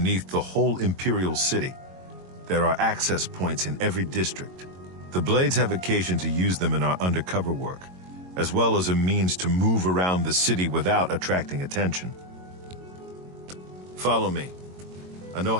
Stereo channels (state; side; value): late; left; 22 ms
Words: the whole Imperial City. There are access points in every district. The Blades have occasion to use them in our undercover work, as well as a means to move around the city without attracting attention. Follow me. I know